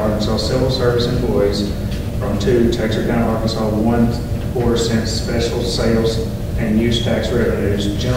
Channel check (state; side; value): identical; both; correlation 1.00